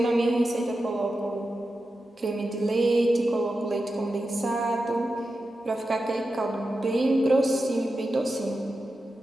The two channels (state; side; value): normal; both; correlation 0.91